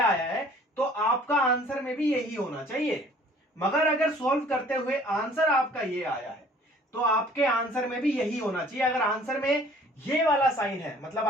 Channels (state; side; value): normal; both; correlation 0.54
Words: है, तो आपका आंसर में भी यही होना चाहिए। मगर अगर सोल्व करते हुए आंसर आपका ये आया है, तो आपके आंसर में भी यही होना चाहिए। अगर आंसर में ये वाला साइन है, मतलब